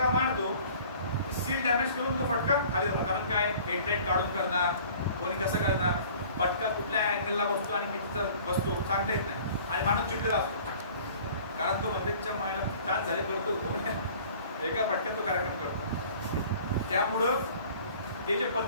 मारतो सील डॅमेज करून तो फटका खाली जातो. कारण काय, हेडलाईट काढून करणार, कोणी कसं करणार, फटका कुठल्या अँगलला बसतो आणि कितीचा बसतो सांगता येत नाही, आणि माणूस चिडलेला असतो, कारण तो मंदिरच्या मायला चान्स झाले करतो, एका फटक्यात तो कार्यक्रम करतो. त्यामुळं ते जे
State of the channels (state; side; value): inverted; both; correlation -0.49